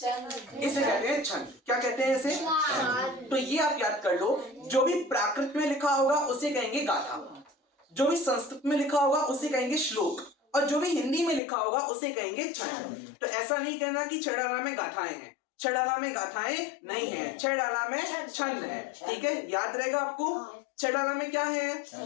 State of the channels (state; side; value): drops out; right; at 11.4 s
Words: इसे कहते हैं छंद। क्या कहते हैं इसे? तो ये आप याद कर लो, जो भी प्राकृत में लिखा होगा उसे कहेंगे गाथा, जो भी संस्कृत में लिखा होगा उसे कहेंगे श्लोक, और जो भी हिंदी में लिखा होगा उसे कहेंगे छंद। तो ऐसा नहीं कहना कि छड़ाला में गाथाएं हैं, छड़ाला में गाथाएं नहीं है, छड़ाला में छंद है। ठीक है, याद रहेगा आपको। छड़ाला में क्या है?